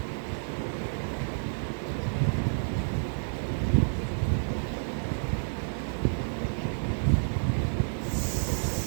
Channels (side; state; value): left; silent; 56 dB below the other